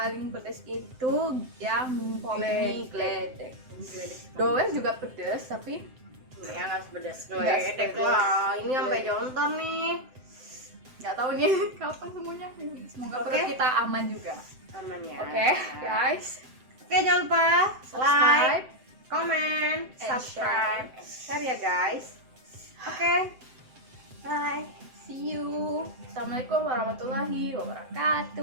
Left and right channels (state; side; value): late; left; 7.8 ms